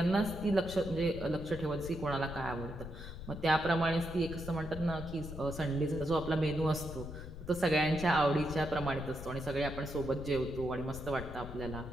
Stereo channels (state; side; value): noise; left; rumble, 10 dB below the sound